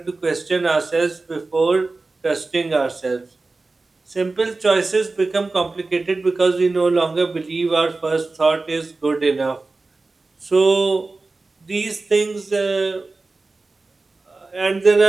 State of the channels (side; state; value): left; quieter; 3.5 dB